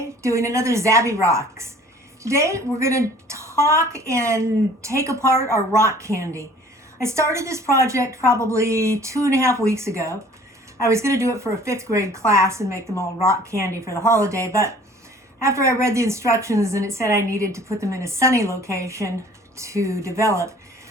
doing another ZabE Rocks. Today we're going to talk and take apart our rock candy. I started this project probably 2.5 weeks ago. I was going to do it for a 5th grade class and make them all rock candy for the holiday, but after I read the instructions and it said I needed to put them in a sunny location to develop,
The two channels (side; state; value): both; normal; correlation 0.51